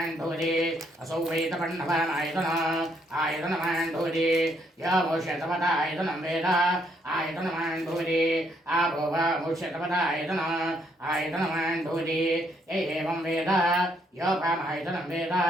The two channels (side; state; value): both; normal; correlation 0.72